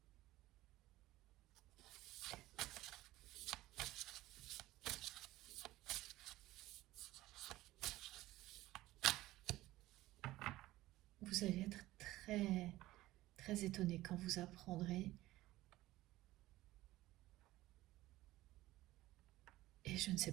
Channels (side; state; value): left; quieter; 16.8 dB